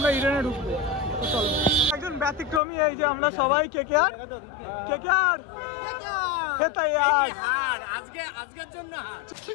ইডেনে ঢুকবো। চলো, একজন ব্যতিক্রমী, এই যে আমরা সবাই কেকেআর খেতে यार আজকের জন্য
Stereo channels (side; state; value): right; drops out; at 2.6 s